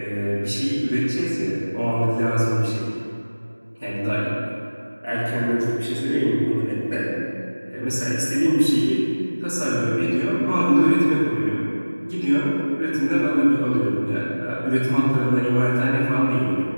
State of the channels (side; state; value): both; inverted; correlation -1.00